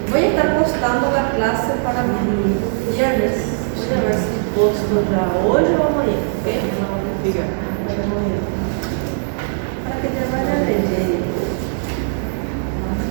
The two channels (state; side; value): silent; left; 66 dB below the other